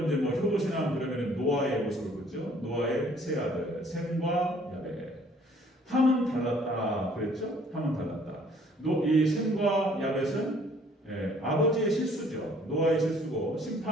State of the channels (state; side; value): normal; both; correlation 0.59